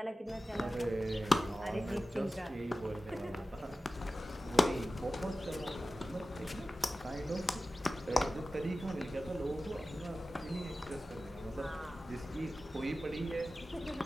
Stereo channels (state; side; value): normal; both; correlation 0.95